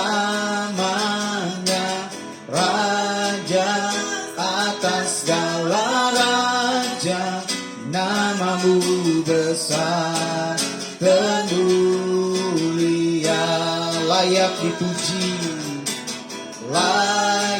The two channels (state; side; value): identical; both; correlation 1.00